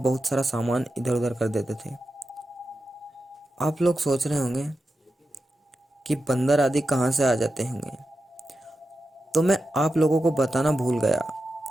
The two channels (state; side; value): normal; both; correlation 0.90